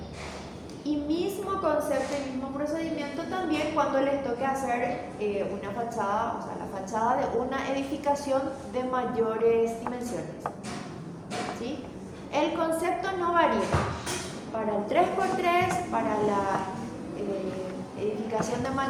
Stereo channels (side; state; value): both; identical; correlation 1.00